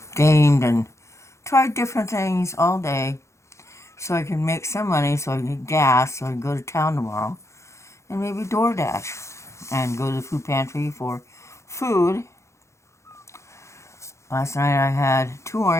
gamed and tried different things all day so I can make some money so I can get gas so I can go to town tomorrow and maybe DoorDash and go to the food pantry for food. Last night I had 2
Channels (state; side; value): late; right; 0.14 ms